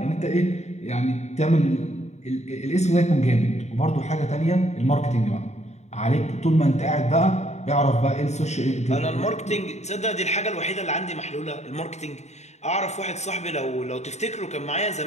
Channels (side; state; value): right; late; 0.33 ms